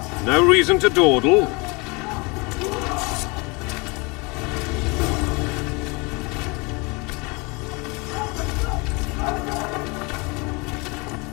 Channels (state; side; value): quieter; right; 28.0 dB